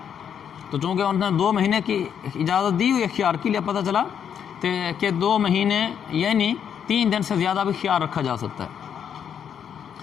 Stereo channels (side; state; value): right; quieter; 8.3 dB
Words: تو چونکہ انہوں نے 2 مہینے کی اجازت دی ہوئی خیار کے لیے، پتہ چلا کہ 2 مہینے یعنی 3 دن سے زیادہ بھی خیار رکھا جا سکتا ہے.